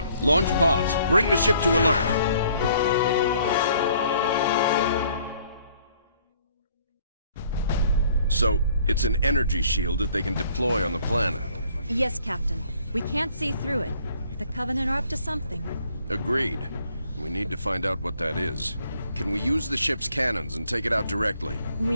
launch pods. Bring the ship to alert. So, it's an energy shield that they can deploy on the planet. Yes, Captain. We can't see through it. The Covenant are up to something. Agreed. We need to find out what that is. Can we use the ship's cannons and take it out directly?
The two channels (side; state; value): both; inverted; correlation -0.62